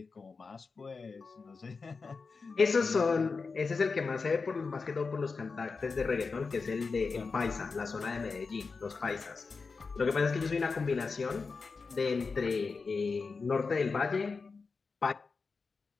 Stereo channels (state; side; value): quieter; right; 4.6 dB